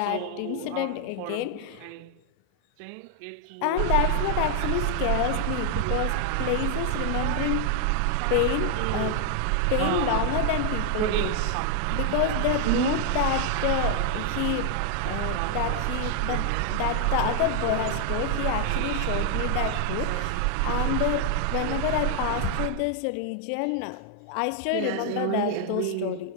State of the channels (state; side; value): different; both; correlation 0.00